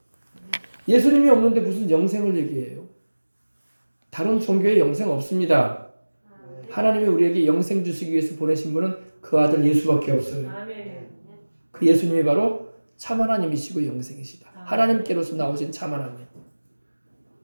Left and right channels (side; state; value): both; inverted; correlation -1.00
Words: 예수님이 없는데 무슨 영생을 얘기해요? 다른 종교에 영생 없습니다. 하나님이 우리에게 영생 주시기 위해서 보내신 분은 그 아들 예수밖에 없어요. 그 예수님이 바로 참 하나님이시고 영생이시다. 하나님께로서 나오신 참 하나님.